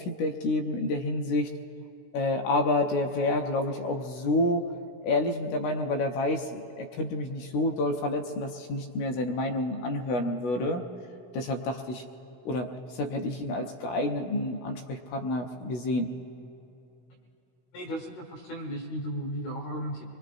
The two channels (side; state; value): right; late; 16 ms